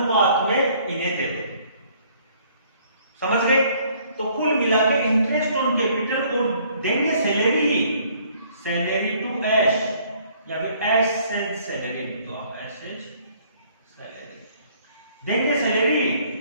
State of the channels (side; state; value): both; inverted; correlation -0.61